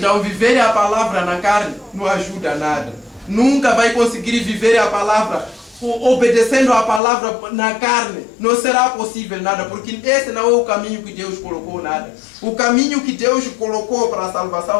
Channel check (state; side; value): drops out; right; at 7.0 s